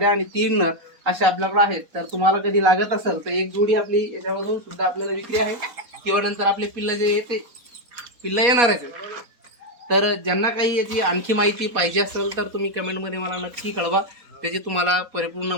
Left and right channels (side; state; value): left; late; 4.2 ms